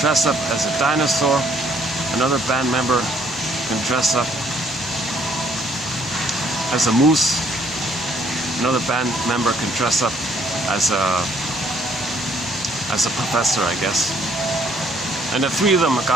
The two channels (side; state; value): both; normal; correlation 0.65